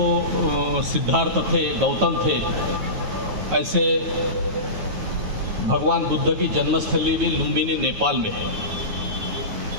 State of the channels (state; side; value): late; left; 9.2 ms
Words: सिद्धार्थ थे, गौतम थे, ऐसे भगवान बुद्ध की जन्मस्थली भी लुम्बिनी नेपाल में है।